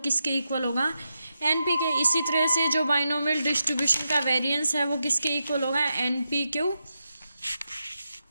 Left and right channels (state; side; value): inverted; both; correlation -0.87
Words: इक्वल होगा, NP के। इसी तरह से जो बाइनोमियल डिस्ट्रीब्यूशन का वेरिएंस है वो किसके इक्वल होगा, NPQ।